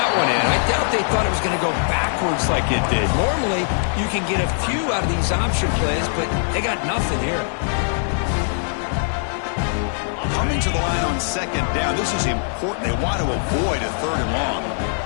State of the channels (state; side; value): silent; right; 65 dB below the other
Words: one in, I doubt they thought it was going to go backwards like it did. Normally, you can get a few out of these option plays, but they got nothing here. Coming to the line on second down, this is important. They want to avoid a third and long.